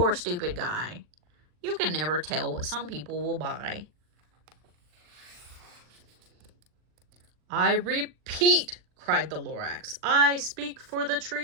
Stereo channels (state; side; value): late; left; 40 ms